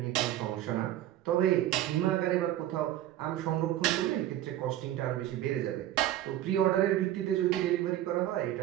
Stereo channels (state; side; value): quieter; left; 13.2 dB